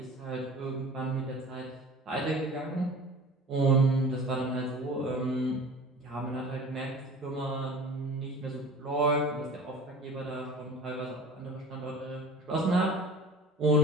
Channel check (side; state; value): both; normal; correlation 0.40